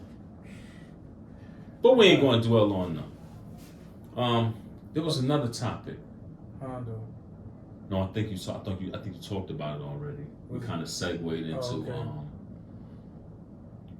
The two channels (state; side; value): identical; both; correlation 1.00